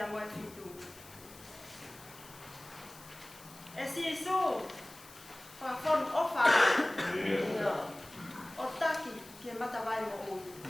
moe fitu. E si isu. Whakon ofa o taki ke matawai mo ui.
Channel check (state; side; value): noise; left; hiss, 20 dB below the sound